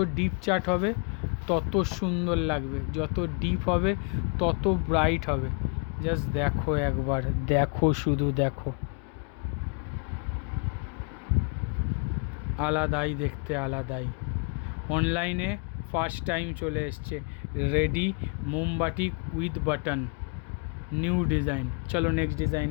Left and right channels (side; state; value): right; quieter; 36.7 dB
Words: ডিপ চার্ট হবে তত সুন্দর লাগবে, যত ডিপ হবে তত ব্রাইট হবে। জাস্ট দেখো একবার, দেখো শুধু দেখো, আলাদাই দেখতে, আলাদাই। অনলাইনে ফার্স্ট টাইম চলে এসছে রেডি মোমবাটি উইথ বাটন, নিউ ডিজাইন। চলো নেক্সট